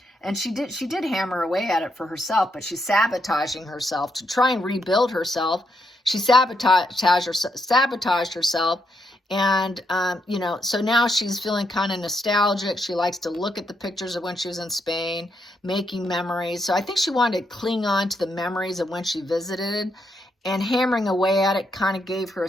And she did hammer away at it for herself, but she's sabotaging herself to try and rebuild herself. She sabotaged herself. And, you know, so now she's feeling kind of nostalgic. She likes to look at the pictures of when she was in Spain, making memories. So I think she wanted to cling on to the memories of when she visited, and hammering away at it kind of gave her a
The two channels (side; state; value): both; normal; correlation 0.79